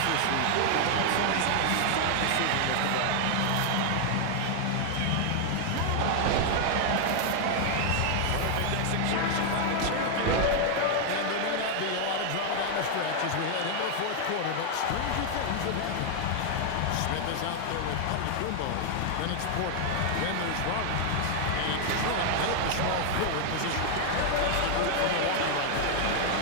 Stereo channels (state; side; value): different; both; correlation 0.00